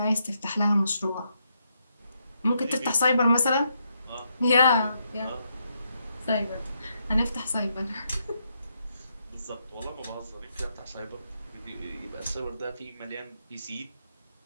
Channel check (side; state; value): both; inverted; correlation -0.79